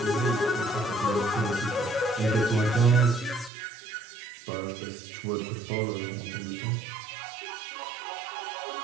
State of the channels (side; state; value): left; drops out; at 3.5 s